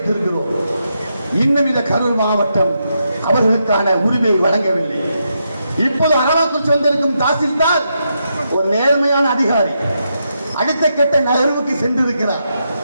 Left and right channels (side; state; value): both; inverted; correlation -0.83